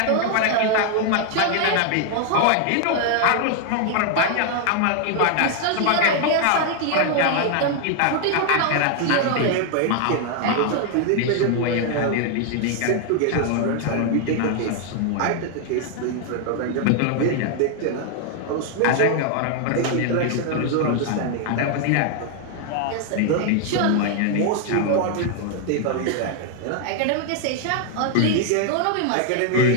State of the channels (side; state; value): both; different; correlation 0.00